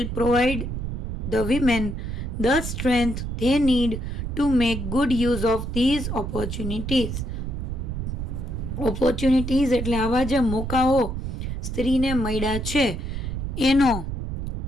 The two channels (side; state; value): right; noise; rumble, 4 dB below the sound